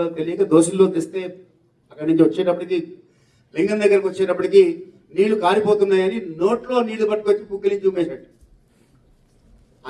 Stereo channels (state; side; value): identical; both; correlation 1.00